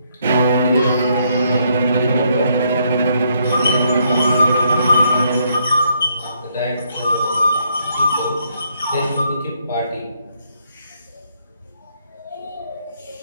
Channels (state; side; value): inverted; both; correlation -0.73